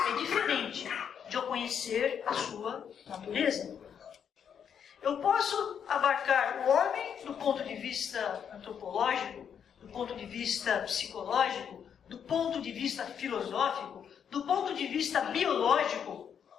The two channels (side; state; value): right; quieter; 7.9 dB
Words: diferente de eu conhecer a sua natureza. Eu posso abarcar o homem do ponto de vista antropológico, do ponto de vista psicológico, do ponto de vista filosófico, do ponto de vista biológico.